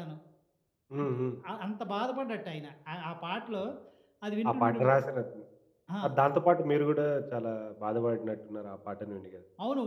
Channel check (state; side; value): identical; both; correlation 1.00